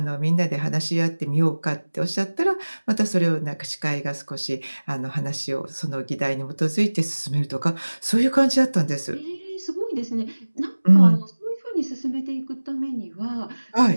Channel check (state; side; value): inverted; both; correlation -1.00